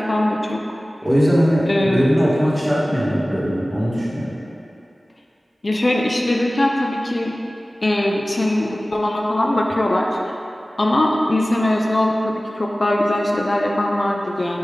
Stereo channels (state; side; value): normal; both; correlation 0.97